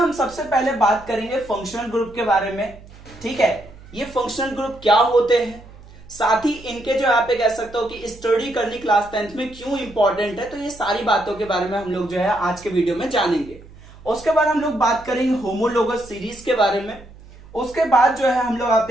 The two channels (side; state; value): right; noise; hum, 21 dB below the sound